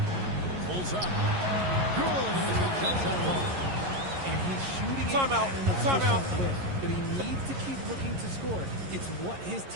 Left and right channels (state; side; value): late; left; 11 ms